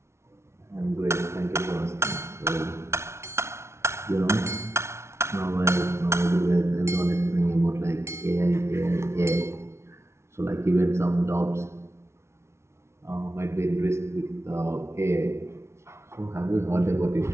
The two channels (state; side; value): late; left; 0.13 ms